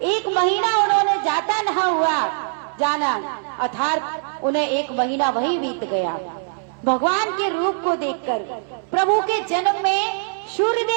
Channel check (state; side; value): silent; left; digital silence